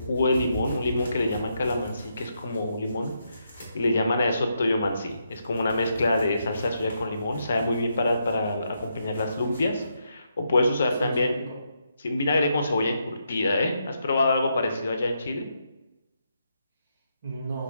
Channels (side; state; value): both; inverted; correlation -0.80